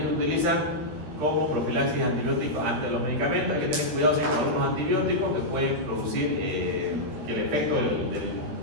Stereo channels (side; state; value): left; late; 13 ms